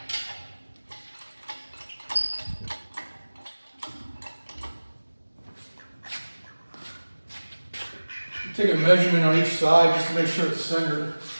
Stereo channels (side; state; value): both; inverted; correlation -1.00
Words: Take a measurement on each side just to make sure it's centered.